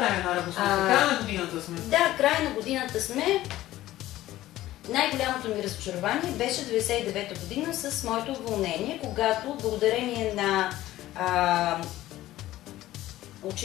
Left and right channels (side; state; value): right; quieter; 15.2 dB